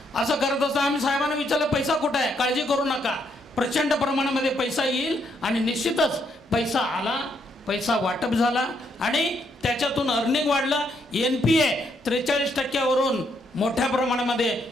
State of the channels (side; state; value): both; normal; correlation 0.74